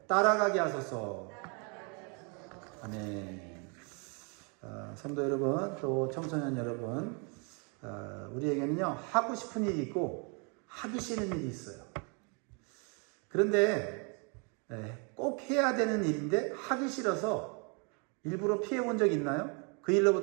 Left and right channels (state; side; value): quieter; left; 35.0 dB